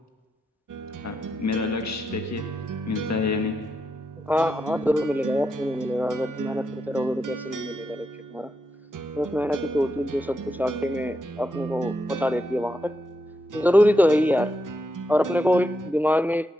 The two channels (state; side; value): normal; both; correlation 0.84